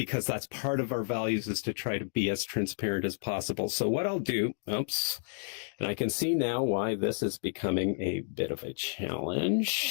that's part of our values, is to try to be as transparent as possible. So what I'll do, oops, and I can see now why this is becoming a bit of a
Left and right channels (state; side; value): silent; right; digital silence